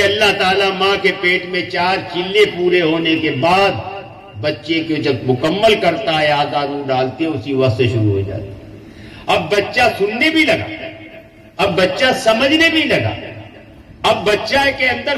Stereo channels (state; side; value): identical; both; correlation 1.00